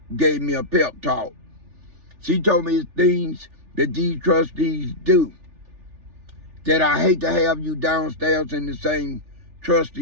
gave me a pep talk. She told me it's things that these trustees do that I hate to have you downstairs in the same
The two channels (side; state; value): left; late; 3.4 ms